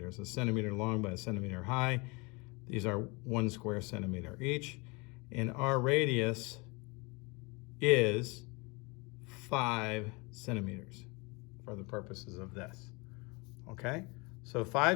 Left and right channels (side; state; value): right; quieter; 27.7 dB